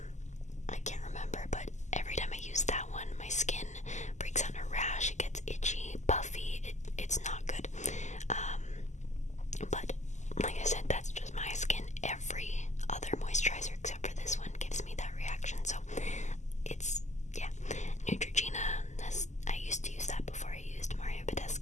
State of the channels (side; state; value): right; late; 0.34 ms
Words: I can't remember, but every time I use that one, my skin breaks out in a rash. It gets itchy, puffy. It's not good. But like I said, that's just my skin. Every other moisturizer except for this one gives me that reaction. So it's, yeah. Neutrogena, I used to use that before I used Mario